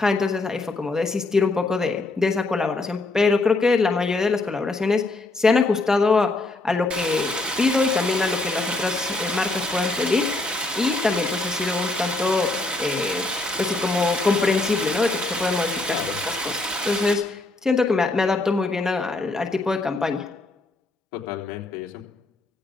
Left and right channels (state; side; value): quieter; right; 3.1 dB